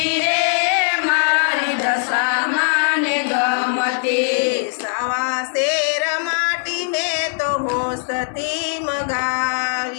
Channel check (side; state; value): right; silent; digital silence